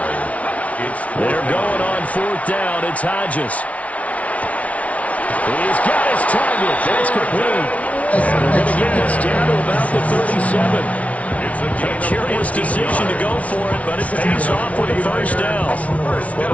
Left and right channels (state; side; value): late; right; 0.066 ms